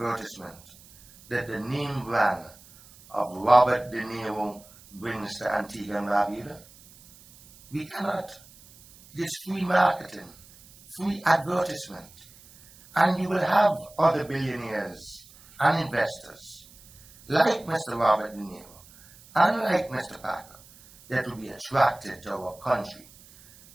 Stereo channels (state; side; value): noise; right; hiss, 24 dB below the sound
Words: that the name brand of Robert De Niro brings to Antigua and Barbuda? We cannot. It is free marketing, free advertisement. And you will have other billionaires and investors like Mr. Robert De Niro and like Mr. Packer that will be attracted to our country